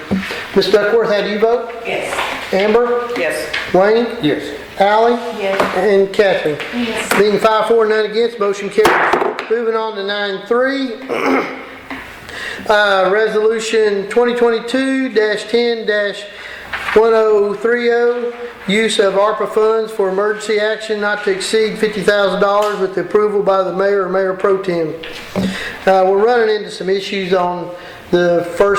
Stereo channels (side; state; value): both; identical; correlation 1.00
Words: Ms. Duckworth, how do you vote? Yes. Amber? Yes. Wayne? Yes. Allie? Yes. And Catherine? Yes. Being 5-4, none against, motion carries. Moving on to 9.3, resolution 2022-10-024, 1030, use of ARPA funds for emergency action not to exceed $50,000 with the approval by the mayor or mayor pro tem. We're running into some issues on the